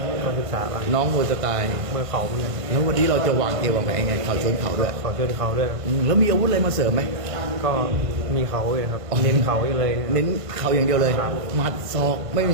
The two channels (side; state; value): left; late; 1.5 ms